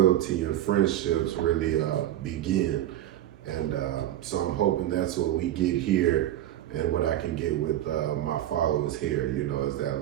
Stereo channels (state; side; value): quieter; left; 12.8 dB